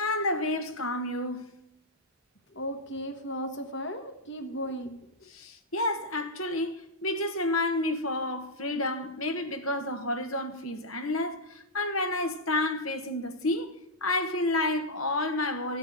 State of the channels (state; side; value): normal; both; correlation -0.07